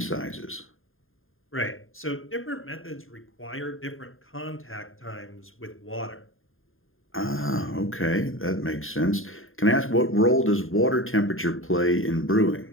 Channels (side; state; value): right; late; 0.60 ms